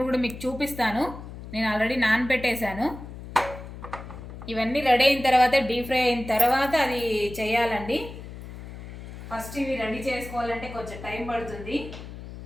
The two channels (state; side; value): noise; left; hum, 12 dB below the sound